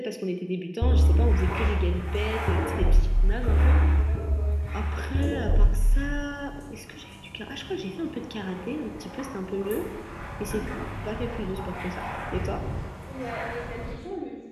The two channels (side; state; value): both; identical; correlation 1.00